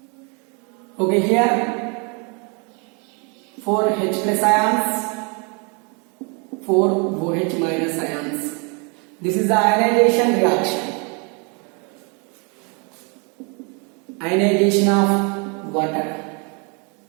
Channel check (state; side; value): quieter; left; 34.0 dB